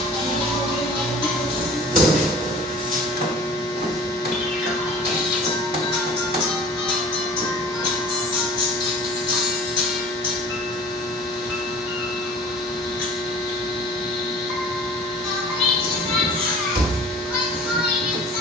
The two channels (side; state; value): both; normal; correlation 0.44